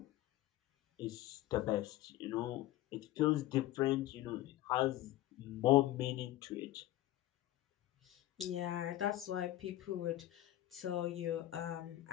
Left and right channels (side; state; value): right; quieter; 14.9 dB